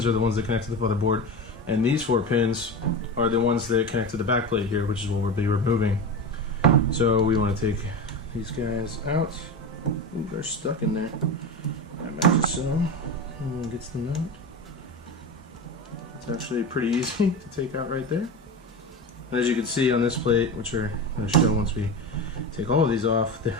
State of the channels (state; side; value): normal; both; correlation 0.24